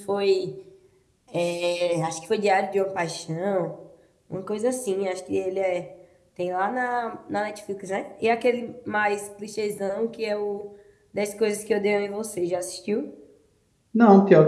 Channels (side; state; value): both; identical; correlation 1.00